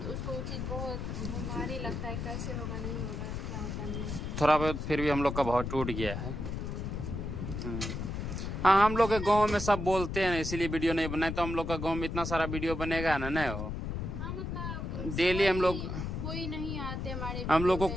तो उसको वो चीज बहुत भारी लगता है, कैसे होगा, नहीं होगा, क्या होता नहीं। थोड़ा बहुत फिर भी हम लोग का बहुत टूट गया है। हाँ हम लोग के गांव में सब बोलते हैं, इसीलिए वीडियो नहीं बनाए। तो हम लोग का गांव में इतना सारा वीडियो बनेगा ना, नहीं हो डेली हम लोग, कोई नहीं आते हमारे, हम लोग को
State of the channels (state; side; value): noise; left; rumble, 4 dB below the sound